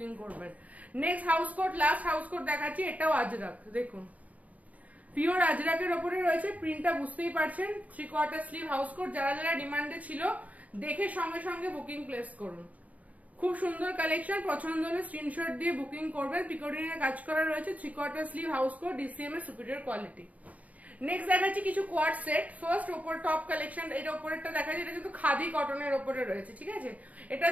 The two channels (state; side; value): late; left; 0.071 ms